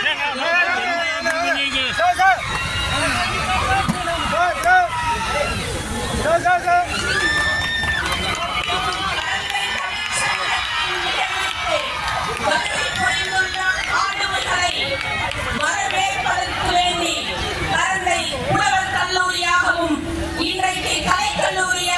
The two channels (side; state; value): both; identical; correlation 1.00